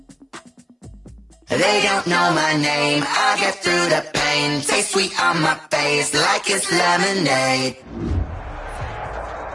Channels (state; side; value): identical; both; correlation 1.00